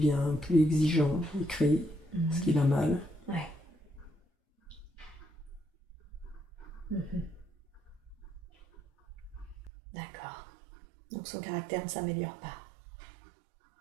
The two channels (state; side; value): drops out; left; at 9.7 s